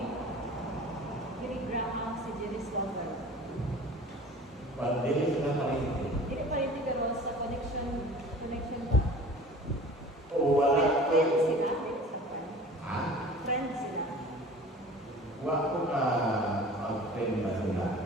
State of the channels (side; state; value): both; normal; correlation 0.43